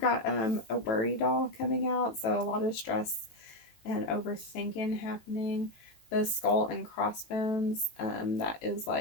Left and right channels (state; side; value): late; right; 18 ms